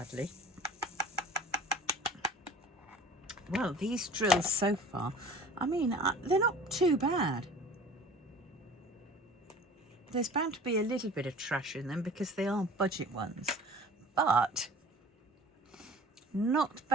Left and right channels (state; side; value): normal; both; correlation 0.44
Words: Well, these drills so far, I mean, they're not too bad. There's bound to be a little bit of trash in them because they are budget ones, but not